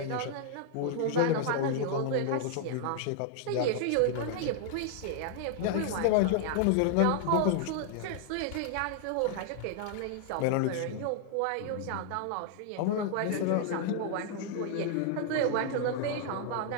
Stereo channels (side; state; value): both; different; correlation 0.00